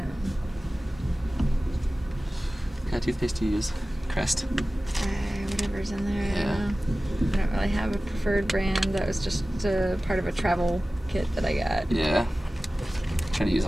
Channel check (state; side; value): normal; both; correlation 0.96